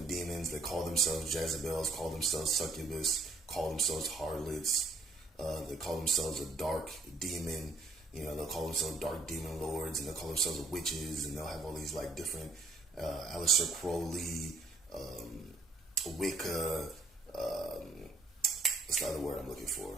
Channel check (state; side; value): quieter; left; 3.1 dB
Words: demons. They call themselves Jezebels, call themselves succubus, call themselves harlots. They call themselves a dark demon. You know, they'll call themselves dark demon lords, and they'll call themselves witches, and they'll have all these like different Aleister Crowley, Wicca. What's the other word I'm looking for?